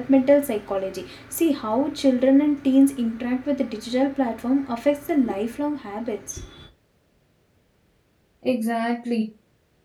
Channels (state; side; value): identical; both; correlation 1.00